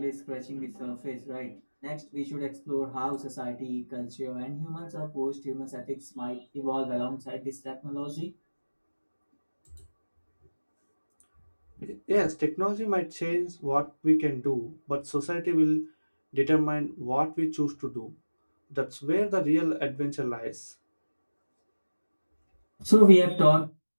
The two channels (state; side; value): inverted; both; correlation -1.00